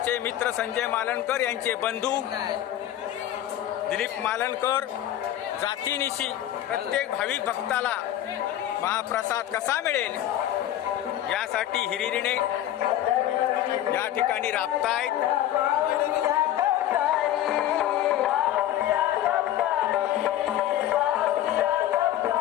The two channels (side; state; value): right; quieter; 12.6 dB